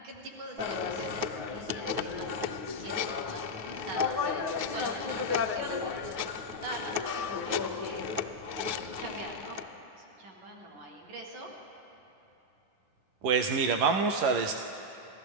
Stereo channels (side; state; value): left; late; 9.4 ms